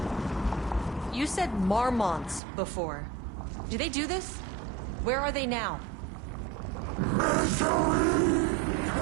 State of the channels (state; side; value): drops out; left; at 2.4 s